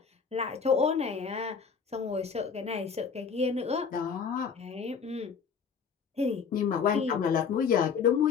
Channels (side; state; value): right; quieter; 6.2 dB